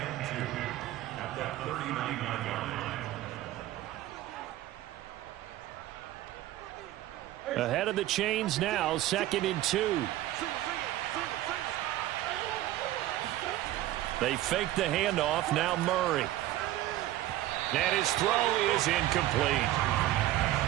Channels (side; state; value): left; quieter; 14.8 dB